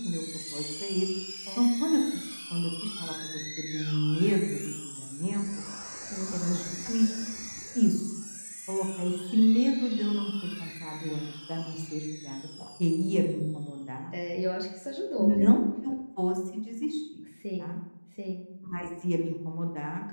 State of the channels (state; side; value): inverted; both; correlation -1.00